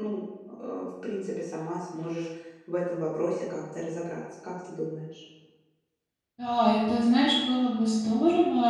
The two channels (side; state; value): both; identical; correlation 1.00